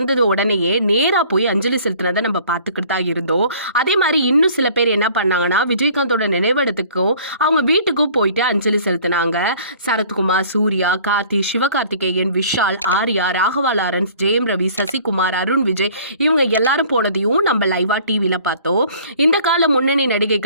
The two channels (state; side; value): inverted; both; correlation -0.52